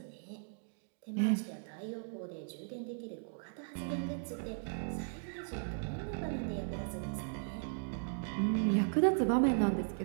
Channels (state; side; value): silent; left; digital silence